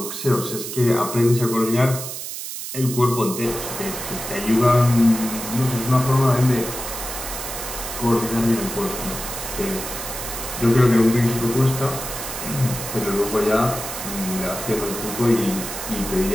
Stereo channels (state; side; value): noise; right; hiss, 7 dB below the sound